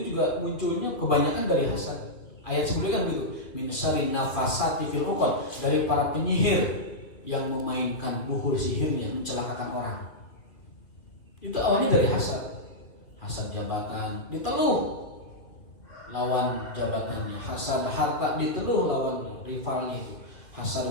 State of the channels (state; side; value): late; right; 2.7 ms